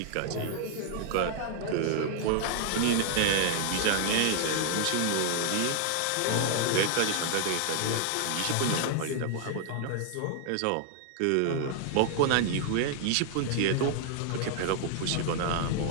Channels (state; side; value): different; both; correlation 0.00